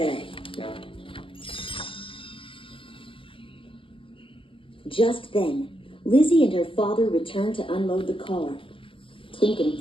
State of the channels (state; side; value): late; right; 0.25 ms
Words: Just then, Lizzy and her father returned to unload the car. Tink and